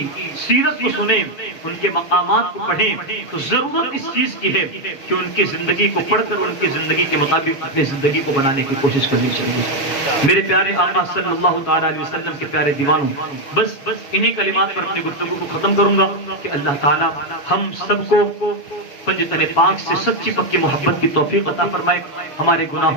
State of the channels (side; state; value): right; late; 7.1 ms